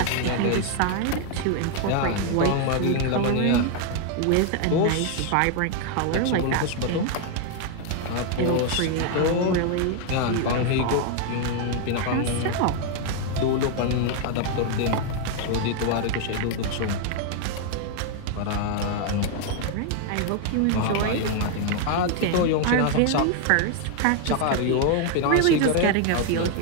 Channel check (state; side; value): different; both; correlation 0.00